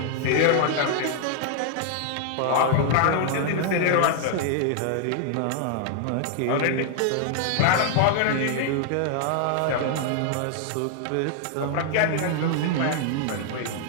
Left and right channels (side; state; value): both; different; correlation 0.00